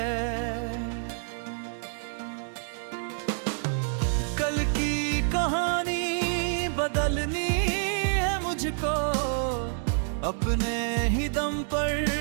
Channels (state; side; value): silent; left; digital silence